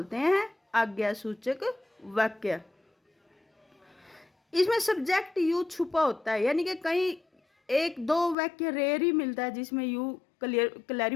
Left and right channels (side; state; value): right; drops out; at 8.3 s